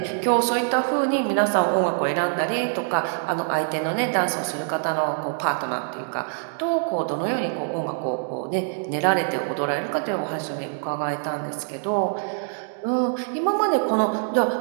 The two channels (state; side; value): silent; left; digital silence